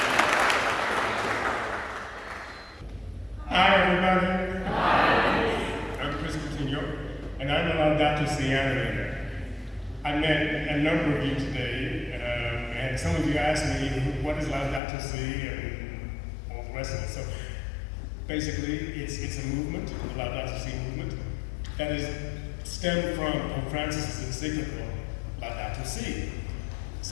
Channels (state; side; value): drops out; right; at 14.8 s